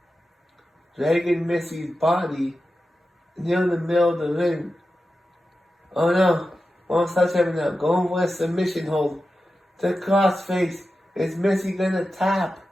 Dragging Missy's body near the middle of the ring. Oh no. Mama Sledgehammer now going for a submission hold. The crossface. Is Missy gonna tap?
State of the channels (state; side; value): normal; both; correlation 0.92